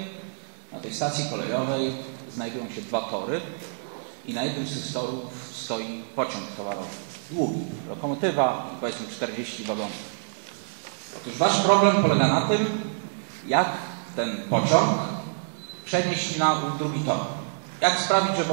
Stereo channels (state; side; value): silent; left; digital silence